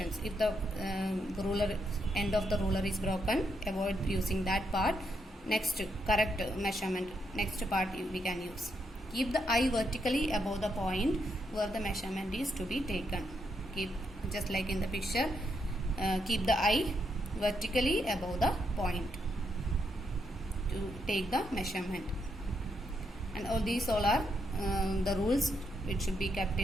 If the ruler end of the ruler is broken, avoid using that part. Next, correct measurement. Next part we can use. Keep the eye vertically above the point where the measurement is to be taken. Keep, just like in the picture, keep the eye vertically above the point to take the measurement. And all these are the rules which should be kept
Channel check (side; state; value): both; normal; correlation 0.79